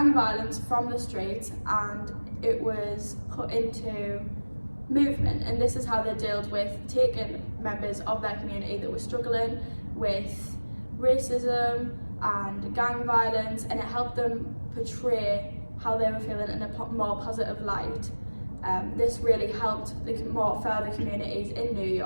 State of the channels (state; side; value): inverted; both; correlation -1.00